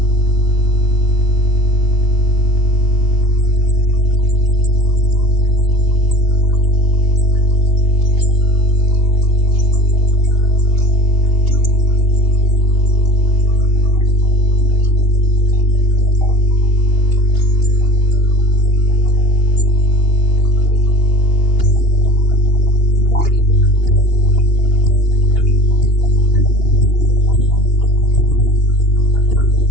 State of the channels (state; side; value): late; right; 2.8 ms